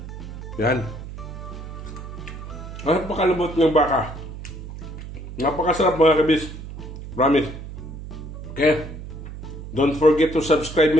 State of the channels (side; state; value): right; noise; hum, 11 dB below the sound